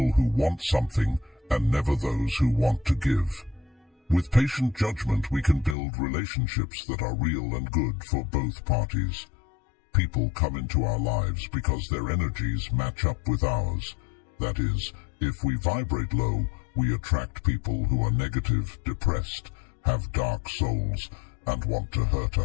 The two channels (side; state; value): right; drops out; at 5.8 s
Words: who want something and never those who want to give. With patient judgment, we can build relationships that are real and good for both parties. People come into our lives because their energies match up with ours. That is, if we vibrate low, we attract people who are negative, depressed, have dark souls, and want to hurt